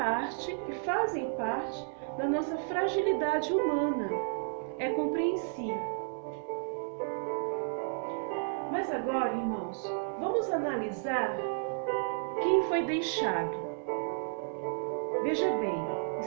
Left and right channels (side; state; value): left; silent; 56 dB below the other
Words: fazem parte da nossa fragilidade humana. É compreensível. Mas agora, irmãos, vamos analisar quem foi deixado. Veja bem,